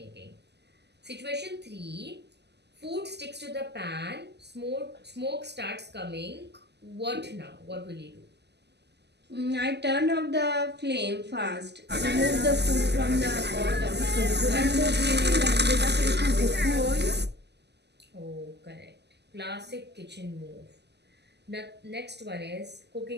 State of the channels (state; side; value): late; left; 0.50 ms